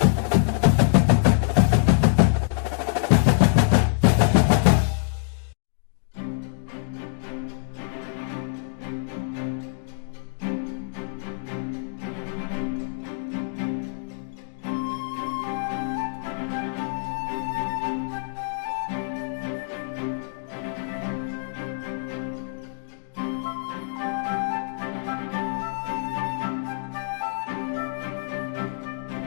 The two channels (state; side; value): silent; right; digital silence